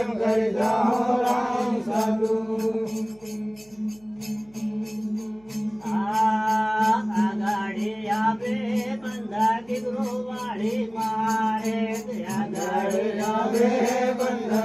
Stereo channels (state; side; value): noise; right; hum, 29 dB below the sound